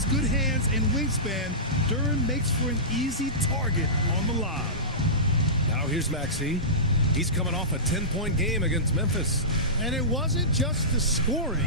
good hands and wingspan, Duran makes for an easy target on the lob. Now here's Maxey. He's coming off a 10-point game against Memphis. And it wasn't just the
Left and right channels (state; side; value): normal; both; correlation -0.19